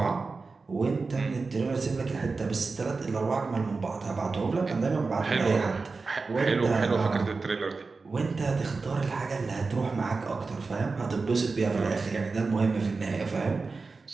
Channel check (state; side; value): quieter; left; 4.1 dB